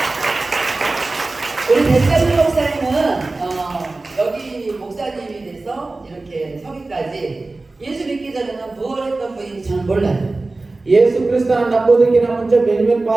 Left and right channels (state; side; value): quieter; left; 3.3 dB